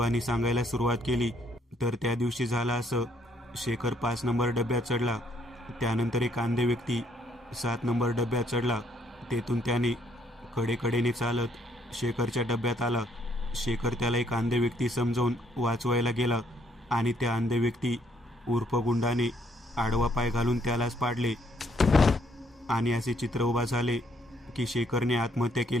सांगायला सुरुवात केली तर त्या दिवशी झालं असं. शेखर 5 नंबर डब्यात चढला. त्यानंतर एक अंधे व्यक्ती 7 नंबर डब्यात चढला. तेथून त्याने कडेकडेने चालत शेखरच्या डब्यात आला. शेखर त्याला एक अंधे व्यक्ती समजावून वाचवायला गेला आणि त्या अंधे व्यक्ती उर्फ गुंडाने आडवा पाय घालून त्यालाच पाडले आणि असे चित्र उभा झाले की शेखरने आत्महत्या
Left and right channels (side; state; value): both; normal; correlation 0.68